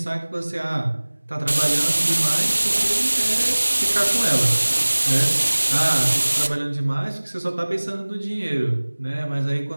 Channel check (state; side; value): inverted; both; correlation -1.00